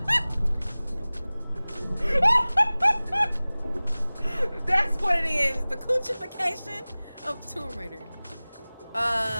That's what it is. The coochification of Tomb Raider.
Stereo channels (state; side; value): inverted; both; correlation -0.99